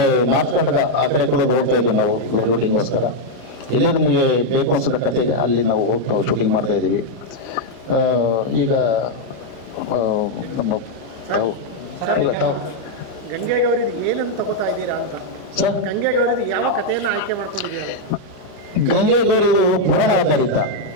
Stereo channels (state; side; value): late; left; 31 ms